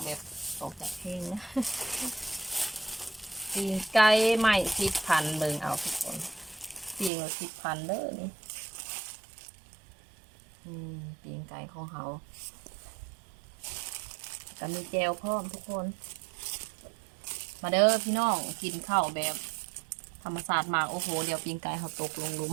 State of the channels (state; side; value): drops out; left; at 7.1 s